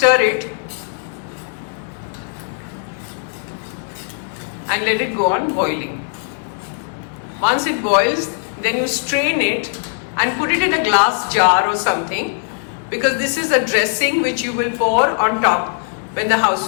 it and let it go on boiling. Once it boils, then you strain it and put it in a glass jar or something, because this is a dressing which you will pour on top when the Khow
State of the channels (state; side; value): silent; right; digital silence